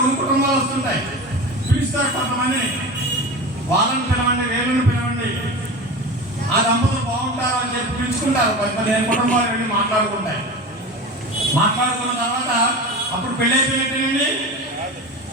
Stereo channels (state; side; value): normal; both; correlation 0.29